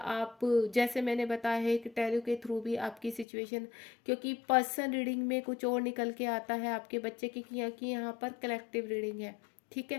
जैसे मैंने बताया है कि टैरो के थ्रू भी आपकी सिचुएशन, क्योंकि पर्सन रीडिंग में कुछ और निकल के आता है आपके बच्चे की, कि यहाँ पर कलेक्टिव रीडिंग है, ठीक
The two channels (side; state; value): right; drops out; at 3.2 s